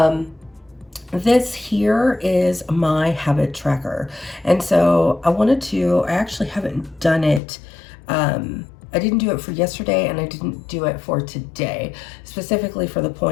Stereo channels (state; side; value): drops out; right; at 7.4 s